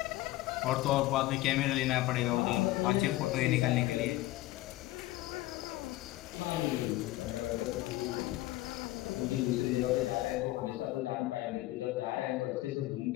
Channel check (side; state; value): right; quieter; 17.6 dB